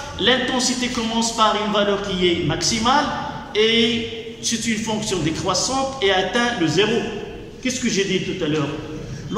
l'intensité commence par une valeur qui est maximale et c'est une fonction décroissante et atteint le 0. Qu'est-ce que j'ai dit tout à l'heure?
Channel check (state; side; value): identical; both; correlation 1.00